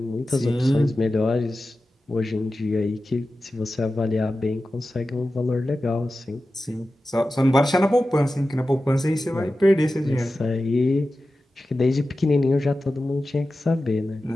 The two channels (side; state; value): both; normal; correlation 0.94